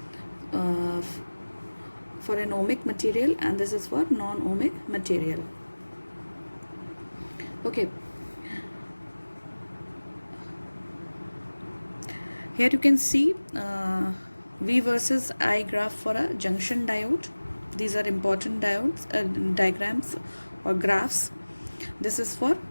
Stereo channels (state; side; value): inverted; both; correlation -1.00